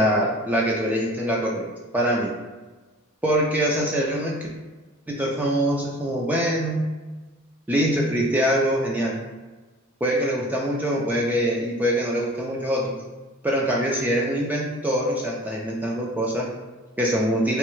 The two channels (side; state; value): both; normal; correlation 0.45